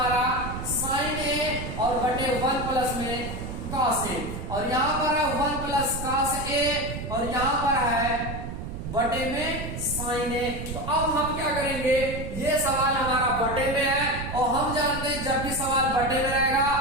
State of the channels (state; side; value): noise; right; rumble, 7 dB below the sound